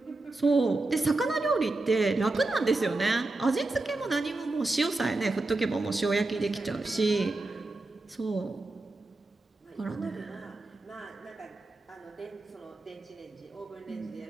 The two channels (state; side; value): quieter; left; 3.0 dB